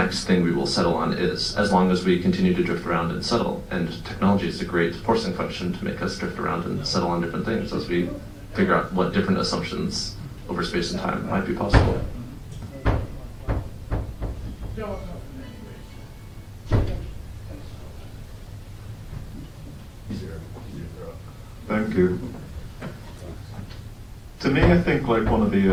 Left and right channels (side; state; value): both; identical; correlation 1.00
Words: thing we will settle on is, as long as we continue to drift around and settle. And technology is a great forcing function to make us drift around and settle on different things as we figure out what different assumptions over space and time might be possible. Thank you. To me, I think like one of